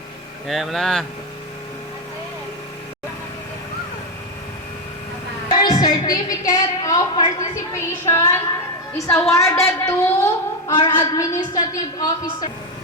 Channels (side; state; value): both; normal; correlation 0.08